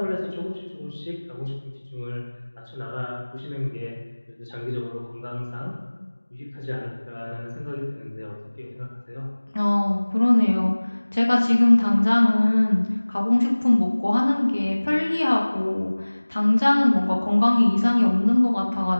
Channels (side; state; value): both; inverted; correlation -1.00